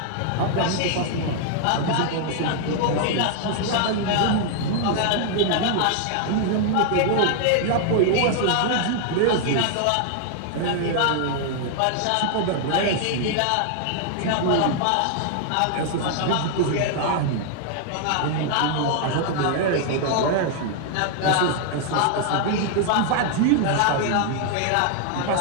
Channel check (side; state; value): both; different; correlation 0.00